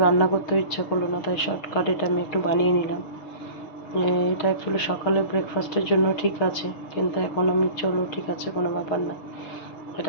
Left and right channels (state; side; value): late; right; 6.6 ms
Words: রান্না করতেও ইচ্ছা করলো না, তাই শর্টকাট এটা আমি একটু বানিয়ে নিলাম। এটা অ্যাকচুয়ালি সকালে ব্রেকফাস্টের জন্য ঠিক আছে, কিন্তু এখন আমি চলো ঠিক আছে কোনো ব্যাপার না,